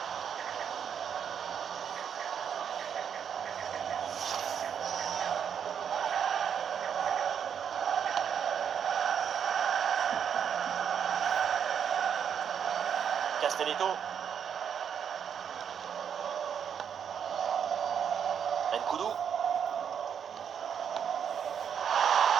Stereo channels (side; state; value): left; quieter; 7.9 dB